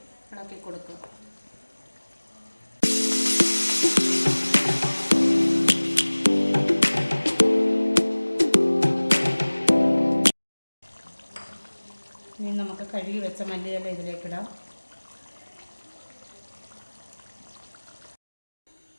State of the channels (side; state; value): both; inverted; correlation -1.00